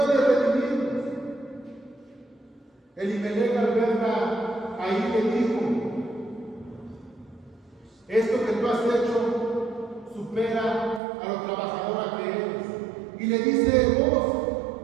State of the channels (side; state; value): left; drops out; at 11.0 s